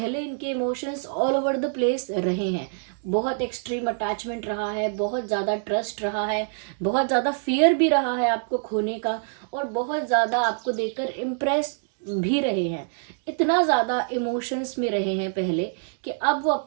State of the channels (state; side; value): silent; left; digital silence